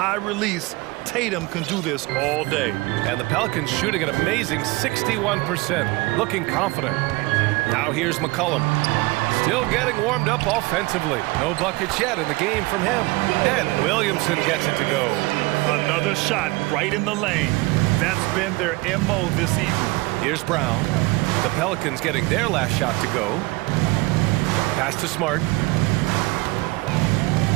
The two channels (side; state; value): left; quieter; 23.1 dB